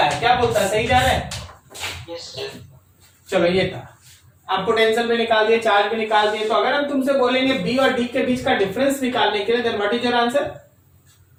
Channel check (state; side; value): identical; both; correlation 1.00